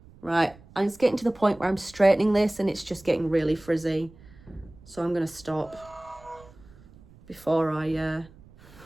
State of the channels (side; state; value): right; noise; rumble, 24 dB below the sound